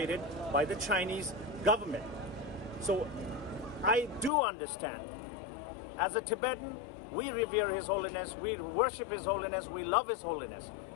by the Chinese government. So I do understand. As a Tibetan, we revere His Holiness, we worship His Holiness, we love His Holiness.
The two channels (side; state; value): right; drops out; at 4.3 s